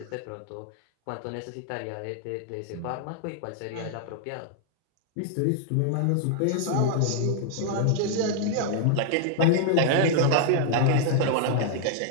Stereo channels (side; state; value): both; different; correlation -0.01